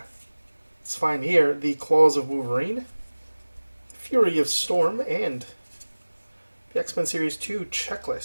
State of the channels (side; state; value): both; inverted; correlation -1.00